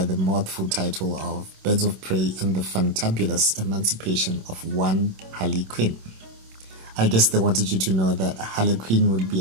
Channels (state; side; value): late; left; 26 ms